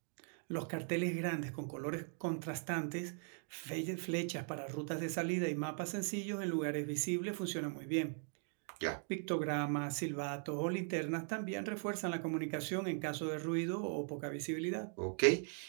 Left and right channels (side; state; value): left; silent; 51 dB below the other